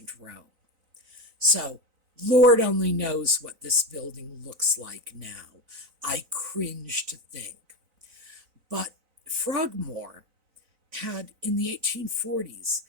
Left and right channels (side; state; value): left; late; 3.9 ms